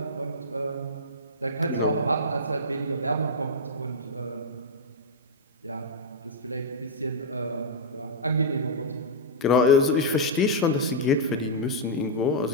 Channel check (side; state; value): both; normal; correlation -0.07